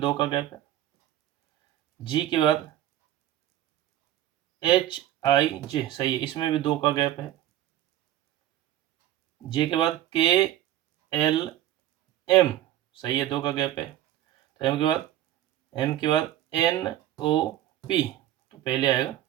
का गैप है। जी के बाद HIJ, सही है, इसमें भी 2 का गैप है। जे के बाद KLM, सही है, 2 का गैप है। तो एम के बाद NOP, तो पहले आएगा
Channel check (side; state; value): left; quieter; 13.0 dB